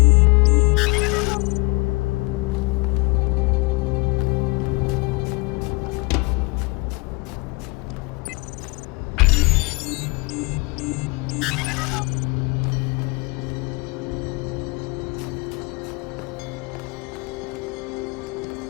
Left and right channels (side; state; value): right; quieter; 28.1 dB